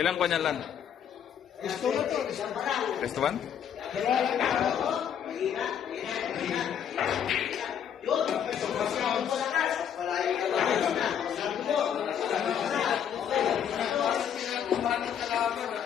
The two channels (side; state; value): right; quieter; 8.7 dB